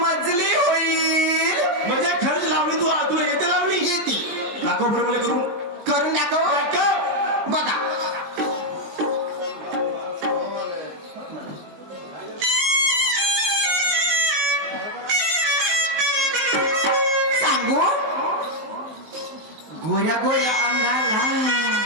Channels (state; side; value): late; left; 19 ms